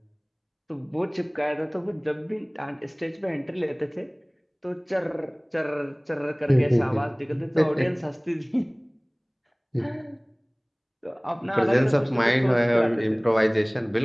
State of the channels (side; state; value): both; identical; correlation 1.00